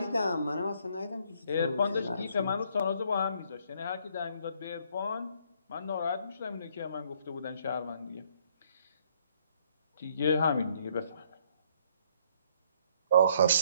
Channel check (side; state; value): both; inverted; correlation -0.66